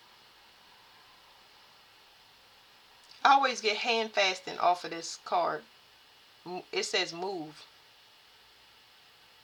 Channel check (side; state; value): both; identical; correlation 1.00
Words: I always get hand fasting off of this card. It says move.